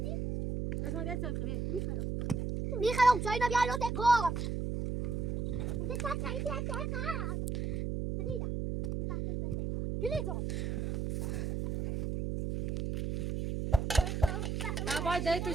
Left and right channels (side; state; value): right; noise; hum, 1 dB below the sound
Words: اسمع دست الخبير میخرم چای نبی الان تکام ده چای تکام دیدم جلیزو باید دای تو